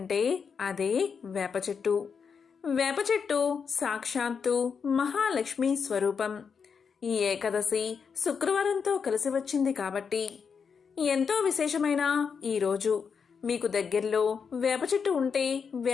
అదే వేప చెట్టు. వేప చెట్టు సాక్షాత్తు మహాలక్ష్మి స్వరూపం. ఈ ఏకాదశి శుక్రవారంతో కలిసి వచ్చింది కాబట్టి ఎంతో విశేషమైన ఈ రోజు మీకు దగ్గరలో వేప చెట్టు ఉంటే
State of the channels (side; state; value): right; quieter; 6.1 dB